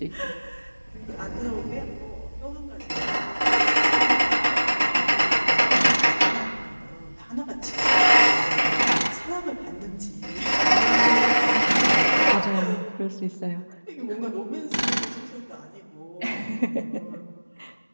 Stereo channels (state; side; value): inverted; both; correlation -1.00